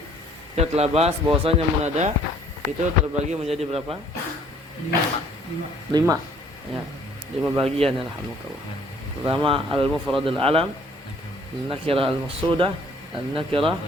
kita telah bahas bahwasanya munada itu terbagi menjadi berapa? 5 ya, 5 bagian. Alhamdulillah. Pertama al-mufradul alam, an-nakirah al-maqsudah, an-nakirah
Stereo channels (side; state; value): both; normal; correlation 0.59